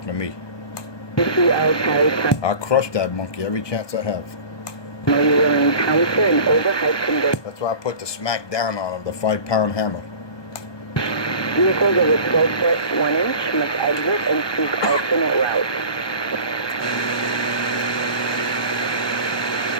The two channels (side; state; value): right; late; 1.2 ms